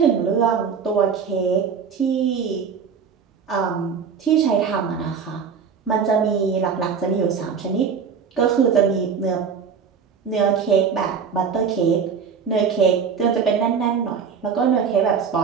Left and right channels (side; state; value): left; quieter; 6.4 dB